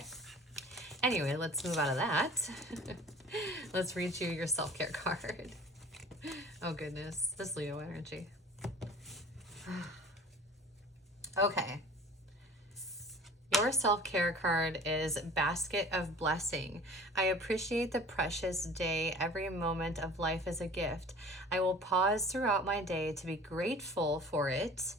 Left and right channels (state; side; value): normal; both; correlation 0.44